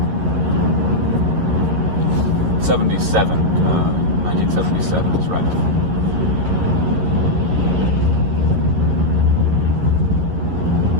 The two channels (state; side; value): late; left; 11 ms